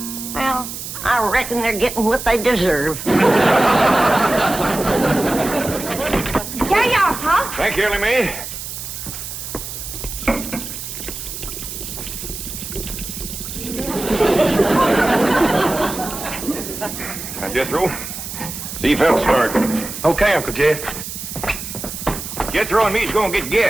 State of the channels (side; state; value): right; noise; hiss, 8 dB below the sound